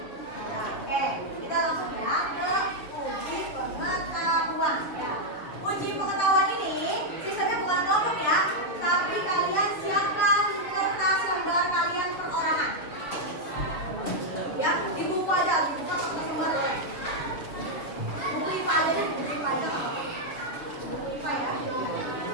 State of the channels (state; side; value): late; right; 7.1 ms